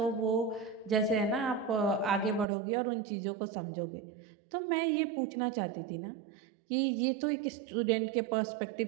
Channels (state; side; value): drops out; left; at 2.5 s